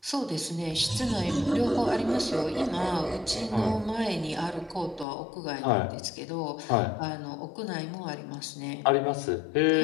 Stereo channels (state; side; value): drops out; right; at 5.1 s